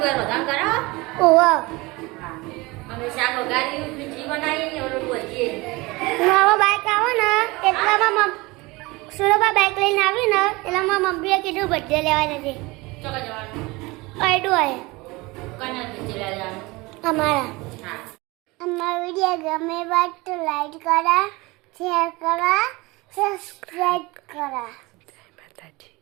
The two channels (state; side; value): quieter; left; 23.3 dB